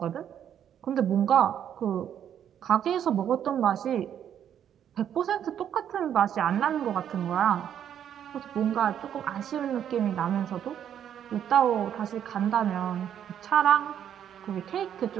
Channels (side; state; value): left; quieter; 9.5 dB